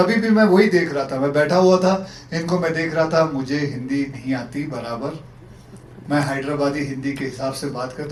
भी मैं वही देख रहा था, मैं बैठा हुआ था, इनको मैं देख रहा था, मुझे हिंदी नहीं आती बराबर, मैं हैदराबादी हिंदी के हिसाब से बात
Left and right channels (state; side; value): identical; both; correlation 1.00